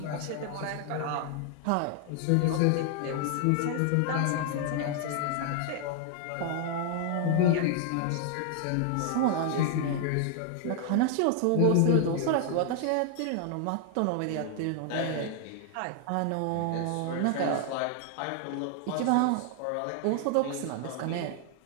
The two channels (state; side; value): different; both; correlation 0.00